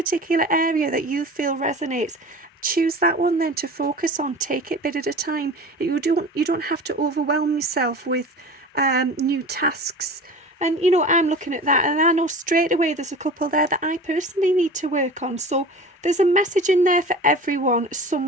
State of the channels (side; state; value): both; normal; correlation 0.37